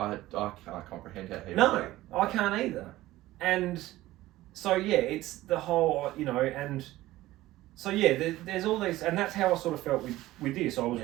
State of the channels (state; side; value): quieter; left; 16.6 dB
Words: I can't comprehend how he. No, I can't either. And so yeah, it's the whole, you know, and so yeah, there's all these, and that's how I sort of felt with this. I